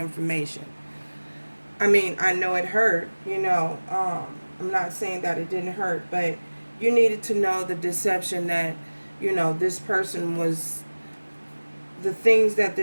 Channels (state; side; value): inverted; both; correlation -1.00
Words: I mean, I know it hurt, I'm not saying that it didn't hurt, but you needed to know the deception that, this person was, the things that